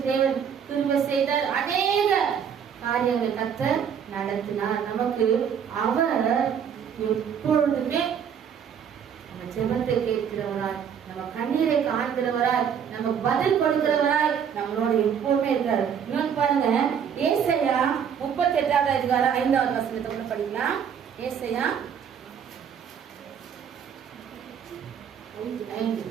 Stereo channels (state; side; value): quieter; left; 7.8 dB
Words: தேவன் திரும்ப செய்தார். அநேக காரியங்கள் கர்த்தர் நடத்தினார். நமக்கு அவர் எப்பொழுதுமே நம்ம ஜெபத்தை கேட்கிறவராய், நம்ம கண்ணீரை காண்கிறவராய், நமக்கு பதில் கொடுக்கிறவராய் நம்மளோட எப்பவுமே இருக்காரு. இன்னொன்னு பாருங்க, ஏசாயா 38வது அதிகாரம் 5வது வசனத்தை கூட படிக்கலாம். ஏசாயா 5.